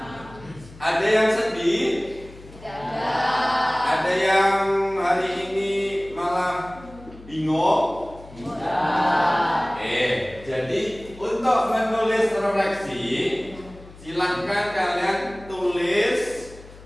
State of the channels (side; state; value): left; noise; hum, 19 dB below the sound